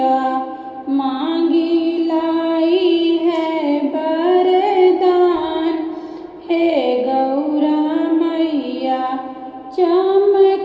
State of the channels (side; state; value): both; identical; correlation 1.00